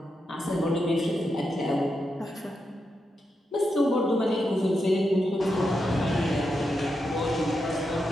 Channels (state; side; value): normal; both; correlation 0.86